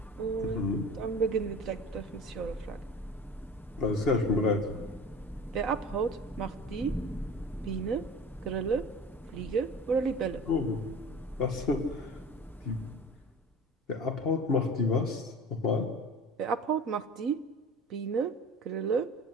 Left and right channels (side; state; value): both; normal; correlation 0.39